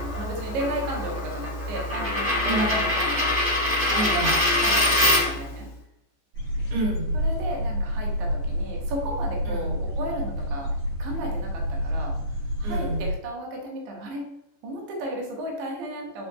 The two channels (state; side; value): late; left; 14 ms